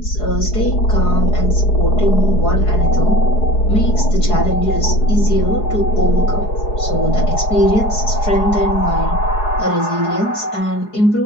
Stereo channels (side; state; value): right; late; 4.7 ms